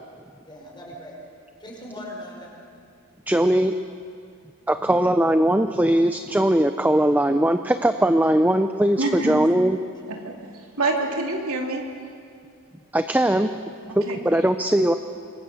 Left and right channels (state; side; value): normal; both; correlation 0.83